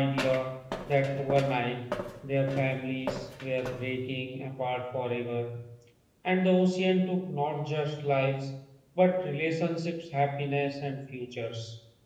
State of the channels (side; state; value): both; identical; correlation 1.00